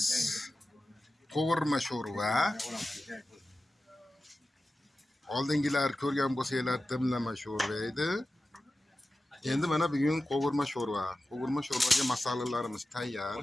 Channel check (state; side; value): normal; both; correlation 0.94